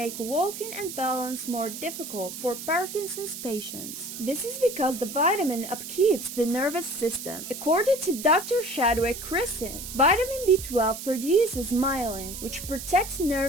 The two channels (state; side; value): noise; right; hiss, 9 dB below the sound